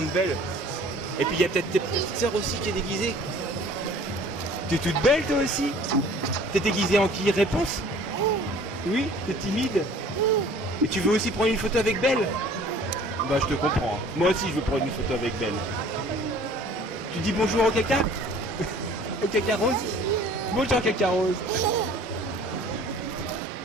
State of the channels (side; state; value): both; normal; correlation 0.50